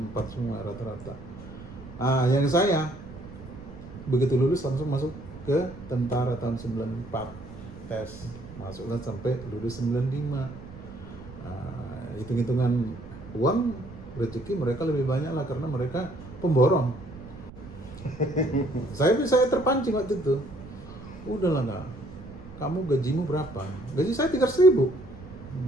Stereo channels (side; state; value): right; noise; rumble, 16 dB below the sound